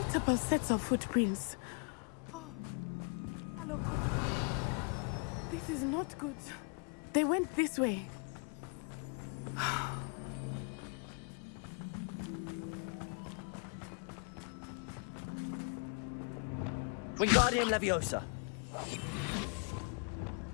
sets of footprints. Oh, Harlow caught up to him here. This is not good. They went this way. Wingardium Leviosa!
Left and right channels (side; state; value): right; quieter; 39.7 dB